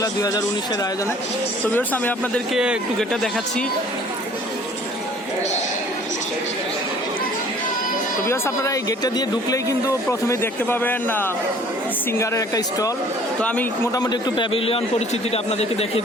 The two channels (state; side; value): normal; both; correlation 0.53